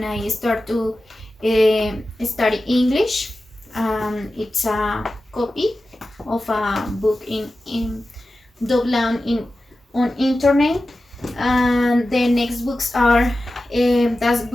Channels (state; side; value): normal; both; correlation 0.94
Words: I start to study English. It's a copy of a book in download in on internet, and the next books are that